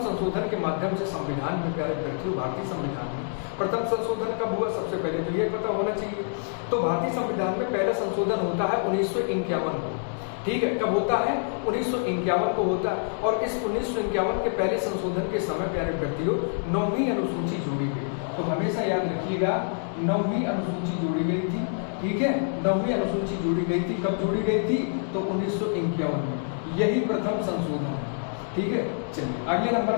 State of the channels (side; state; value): right; silent; digital silence